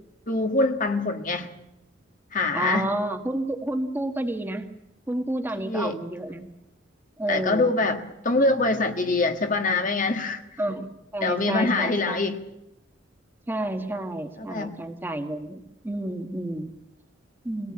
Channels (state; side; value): normal; both; correlation 0.38